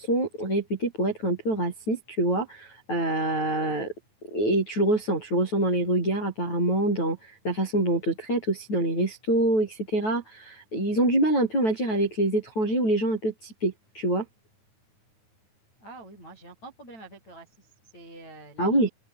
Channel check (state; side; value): late; right; 9.2 ms